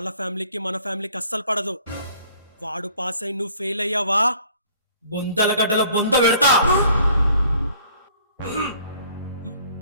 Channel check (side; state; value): both; inverted; correlation -0.57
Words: ఫ్యామిలీకి మన ఫ్యామిలీకి అస్సలు పడదు. వాడు పాస్ అయి నువ్వు ఫెయిల్ అయ్యావా, బొందల గడ్డల బొంద పెడతా.